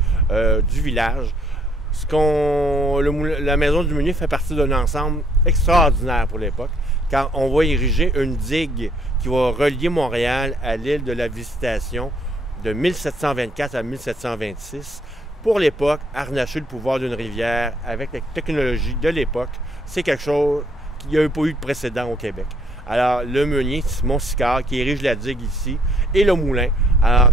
du village. La Maison du Meunier fait partie d'un ensemble extraordinaire pour l'époque, car on va ériger une digue qui va relier Montréal à l'île de la Visitation de 1724 à 1726. Pour l'époque, harnacher le pouvoir d'une rivière avec la technologie de l'époque, c'est quelque chose qui n'y a pas eu de précédent au Québec. Alors, le meunier, Simon Sicard, qui érige la digue ici, et le moulin. Alors,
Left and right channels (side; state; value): both; normal; correlation 0.65